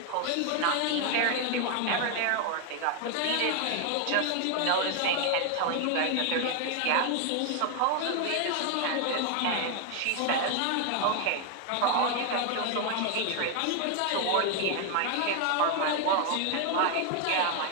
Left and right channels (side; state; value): both; different; correlation 0.01